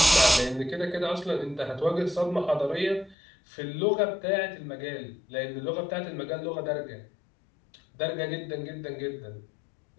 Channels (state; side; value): drops out; right; at 3.2 s